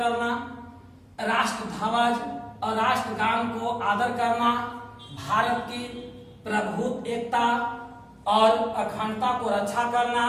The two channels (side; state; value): both; identical; correlation 1.00